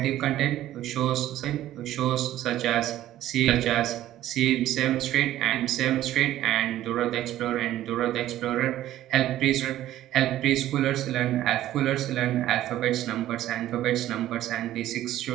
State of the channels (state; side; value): quieter; left; 13.5 dB